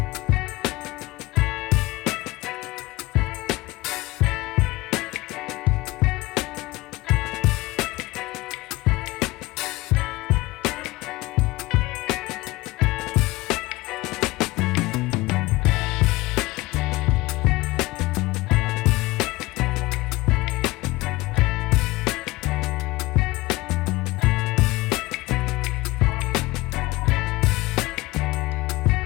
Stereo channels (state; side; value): quieter; right; 20.6 dB